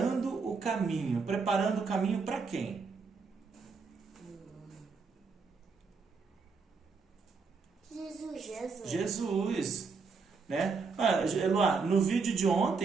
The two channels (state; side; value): quieter; left; 4.8 dB